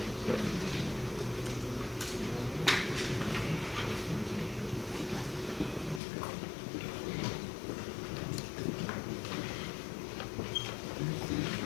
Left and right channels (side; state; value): right; drops out; at 6.0 s